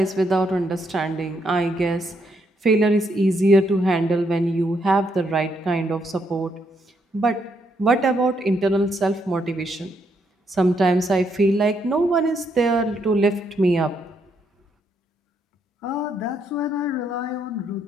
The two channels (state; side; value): normal; both; correlation 0.76